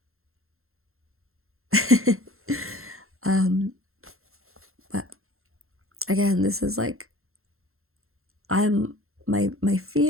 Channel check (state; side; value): late; left; 0.62 ms